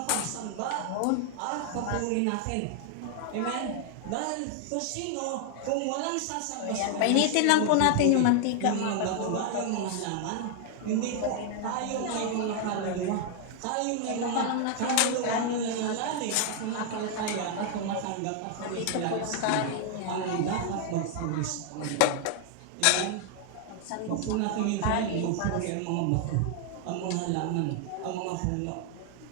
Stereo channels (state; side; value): different; both; correlation 0.00